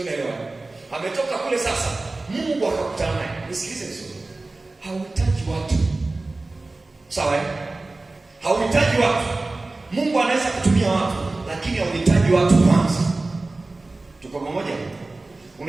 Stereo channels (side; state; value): left; quieter; 3.2 dB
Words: naelewa. Ametoka kule sasa, Mungu akakutana naye. Nisikilize vizuri. Hauhitaji watu. Sawa eh? Hauhitaji watu. Mungu anaweza kutumia watu, lakini hauhitaji watu kwanza. Tuko pamoja?